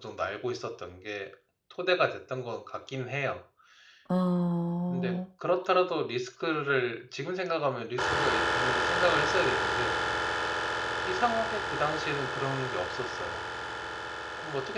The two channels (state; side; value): identical; both; correlation 1.00